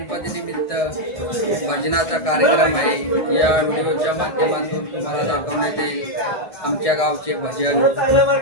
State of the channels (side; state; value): right; late; 1.6 ms